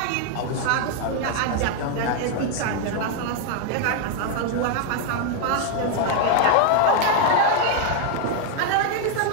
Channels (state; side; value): different; both; correlation 0.01